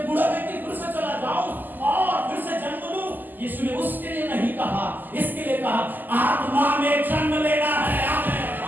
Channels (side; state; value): left; late; 0.087 ms